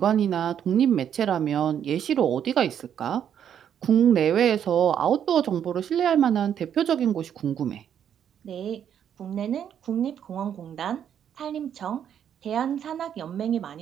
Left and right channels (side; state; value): left; quieter; 9.1 dB